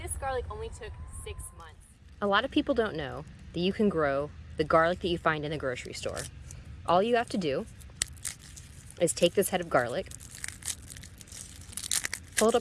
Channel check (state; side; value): identical; both; correlation 1.00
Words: this garlic only took 6 months. A lot of people don't know that you can grow the garlic that you find in the grocery store. All you have to do is take this head of garlic, pull it